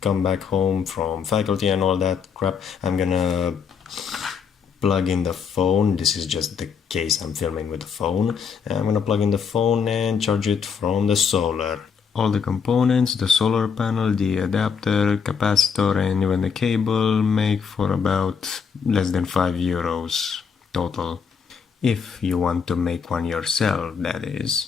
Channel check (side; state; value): right; quieter; 6.4 dB